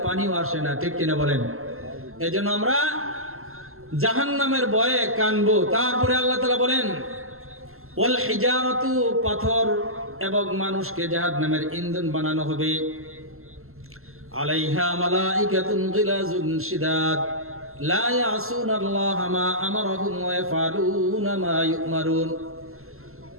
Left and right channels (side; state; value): left; late; 0.62 ms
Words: পানিও আসে না, ঠিক কিনা বলেন? এই জন্য আমরা জাহান্নামের ভয়ে কানবো। তারপরে আল্লাহ তাআলা বলেন, ওয়াল হিজারাতু, পাথর এবং মানুষকে জাহান্নামের ইন্ধন বানানো হবে। আলাইহা মালাইকাতুন গিলাজুন শিদাদ লা ইয়াসুনাল্লাহা মা আমারাহুম ওয়া ইয়াফআলুনা মা ইউমারুন।